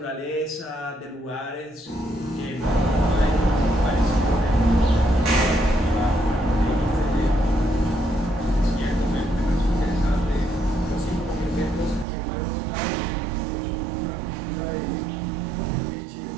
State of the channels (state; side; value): drops out; left; at 12.1 s